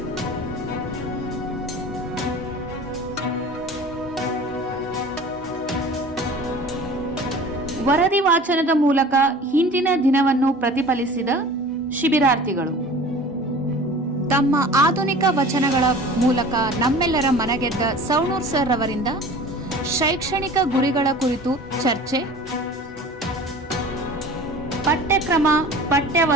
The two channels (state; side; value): normal; both; correlation 0.42